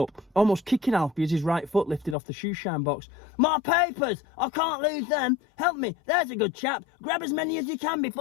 almost kicking Alfie as his right foot lifted off the shoe-shine box. "My papers! I can't lose them! Help me! There's a good chap! Grab as many as you can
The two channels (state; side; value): drops out; right; at 2.1 s